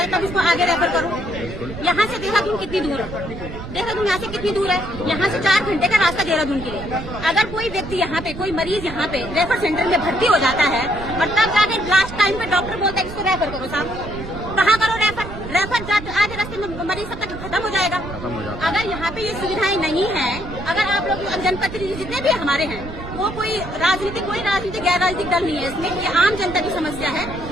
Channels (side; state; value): right; noise; rumble, 10 dB below the sound